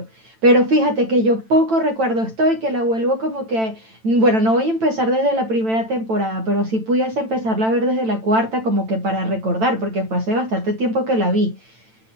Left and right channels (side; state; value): left; late; 9.0 ms